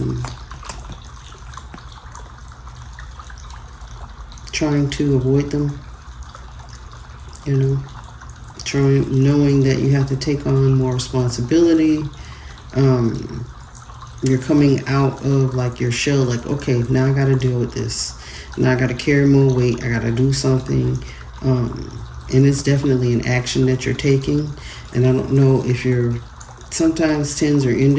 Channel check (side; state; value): both; identical; correlation 1.00